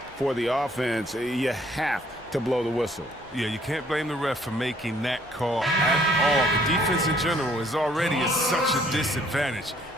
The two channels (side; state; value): both; normal; correlation 0.63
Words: for the offense, you have to blow the whistle. Yeah, you can't blame the ref for making that call at all. The defense in general is already at such a disadvantage